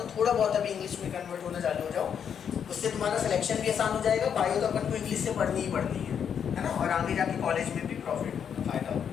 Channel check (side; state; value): right; quieter; 7.9 dB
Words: थोड़ा बहुत अभी इंग्लिश में कन्वर्ट होना चालू हो जाओ, उससे तुम्हारा सिलेक्शन भी आसान हो जाएगा। बायो तो अपन को इंग्लिश से पढ़नी ही पड़नी है ना, और आगे जाके कॉलेज में भी प्रॉफिट होगा, फायदा होगा।